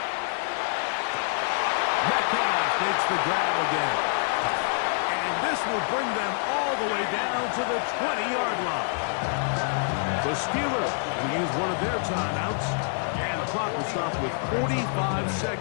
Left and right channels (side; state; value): right; silent; digital silence